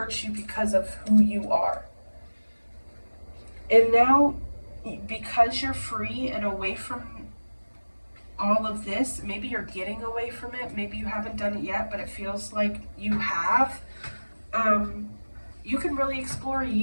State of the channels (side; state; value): both; inverted; correlation -1.00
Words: you because of who you are. And now, because you're free and away from all of this, maybe you're getting away from it, maybe you haven't done it yet, but it feels like you have, you can really explore